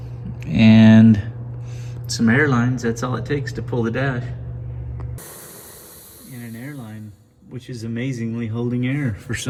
and some air lines. That's all it takes to pull the dash. And an air line, which is amazingly holding air for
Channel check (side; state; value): both; identical; correlation 1.00